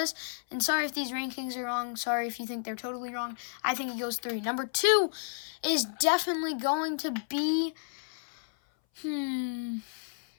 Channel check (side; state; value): right; silent; 57 dB below the other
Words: and sorry if these rankings are wrong. Sorry if you think they're totally wrong. I think he goes 3. Number 2 is definitely going to be, I think